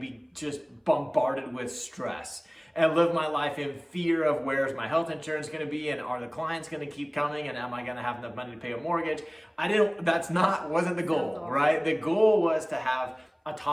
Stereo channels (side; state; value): both; identical; correlation 1.00